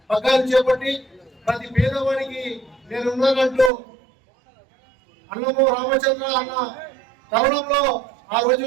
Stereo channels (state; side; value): drops out; left; at 3.7 s